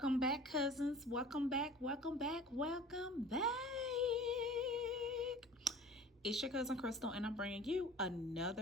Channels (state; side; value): normal; both; correlation 0.43